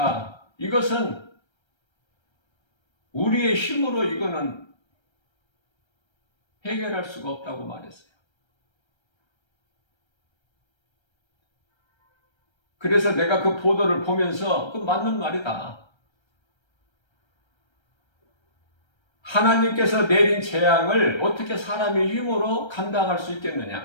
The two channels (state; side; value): late; right; 1.3 ms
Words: 이것은 우리의 힘으로 이거는 해결할 수가 없다고 말했어요. 그래서 내가 그 보도를 보면서 그 맞는 말이다. 하나님께서 내린 재앙을 어떻게 사람의 힘으로 감당할 수